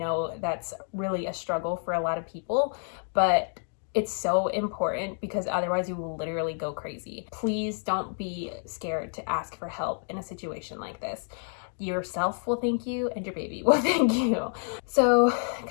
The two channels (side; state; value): right; silent; 58 dB below the other